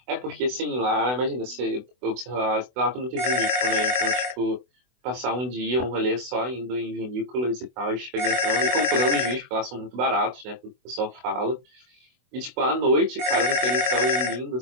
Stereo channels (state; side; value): late; left; 24 ms